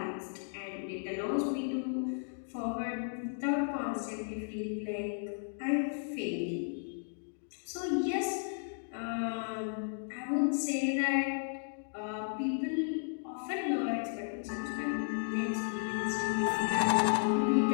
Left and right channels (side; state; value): right; silent; digital silence